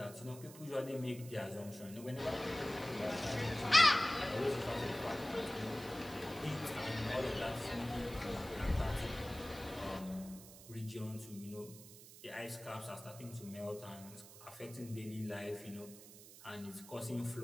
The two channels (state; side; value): noise; right; hiss, 17 dB below the sound